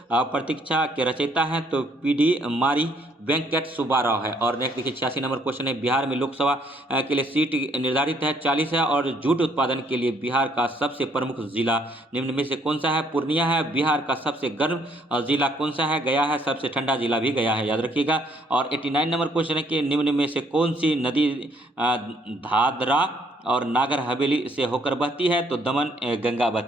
प्रतीक्षा के रचयिता हैं, तो पीडी मारी वेंकट सुब्बाराव है। और नेक्स्ट देखिए, 86 नंबर क्वेश्चन है बिहार में लोकसभा के लिए सीट निर्धारित है 40 है। और जूट उत्पादन के लिए बिहार का सबसे प्रमुख जिला निम्न में से कौन सा है? पूर्णिया है। बिहार का सबसे गर्म जिला कौन सा है? गया है। सबसे ठंडा जिला भी गया है, याद रखिएगा। और 89 नंबर क्वेश्चन है कि निम्न में से कौन सी नदी दादरा और नागर हवेली से होकर बहती है? तो दमन गंगा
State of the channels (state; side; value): normal; both; correlation 0.66